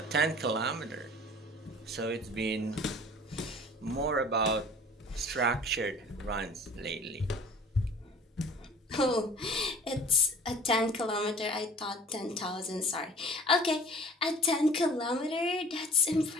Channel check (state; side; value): normal; both; correlation 0.47